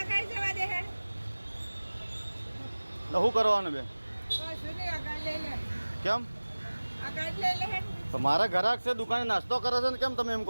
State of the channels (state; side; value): inverted; both; correlation -1.00